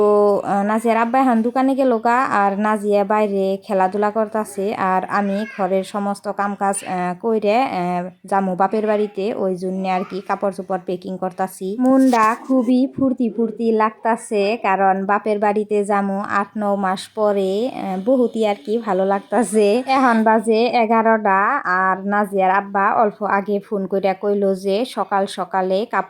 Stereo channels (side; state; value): both; identical; correlation 1.00